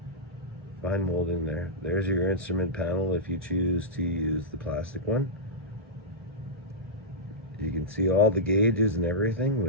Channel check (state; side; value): normal; both; correlation -0.13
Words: Fine molding there. There's your instrument panel if you choose to use the plastic one. You can see all the gauges and everything,